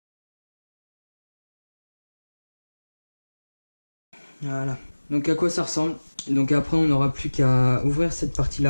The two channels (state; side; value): inverted; both; correlation -1.00